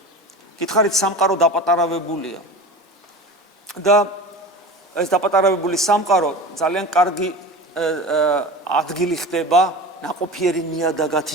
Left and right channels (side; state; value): both; normal; correlation 0.32